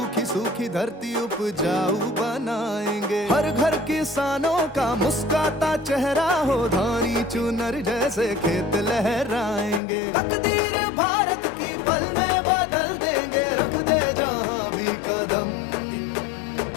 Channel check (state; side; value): drops out; right; at 9.8 s